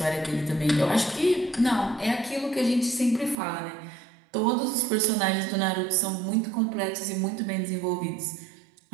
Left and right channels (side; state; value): left; drops out; at 3.4 s